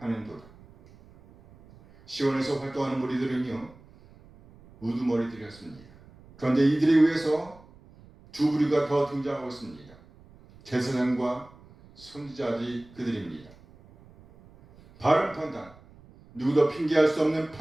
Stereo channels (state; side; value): noise; right; rumble, 24 dB below the sound